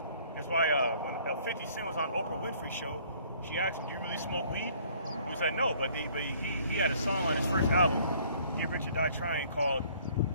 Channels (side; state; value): both; inverted; correlation -0.58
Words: That's why when 50 Cent was on Oprah Winfrey's show, she asked him, "Do you really smoke weed?" He said no, but he had a song on his first album, Get Rich or Die Trying, called